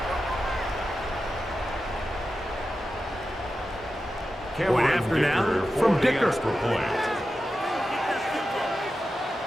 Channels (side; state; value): both; normal; correlation 0.91